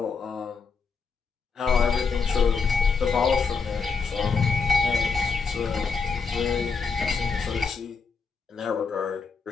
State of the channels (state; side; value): quieter; right; 5.1 dB